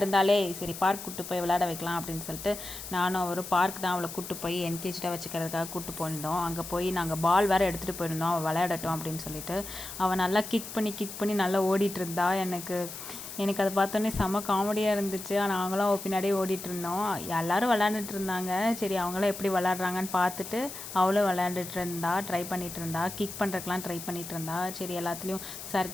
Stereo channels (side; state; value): left; noise; hiss, 10 dB below the sound